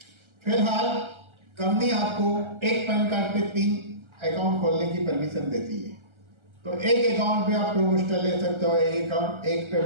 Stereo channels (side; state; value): left; late; 1.3 ms